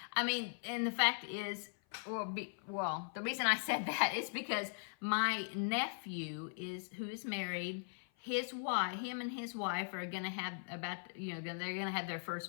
I mean, and the fact is, well, the reason I said that is because my nephew who is married, him and his wife are going to have they're going to have their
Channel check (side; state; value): right; silent; 51 dB below the other